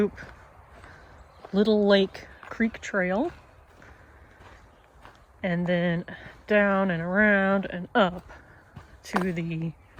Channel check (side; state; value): both; identical; correlation 1.00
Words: Little Lake Creek Trail, and then down and around and up to the